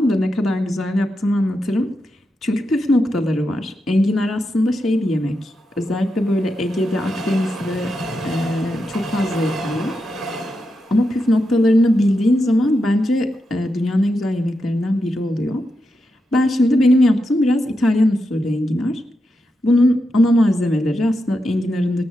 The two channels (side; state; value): both; normal; correlation 0.86